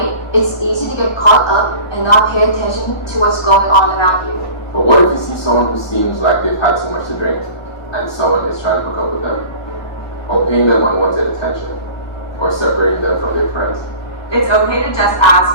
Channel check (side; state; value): right; late; 1.4 ms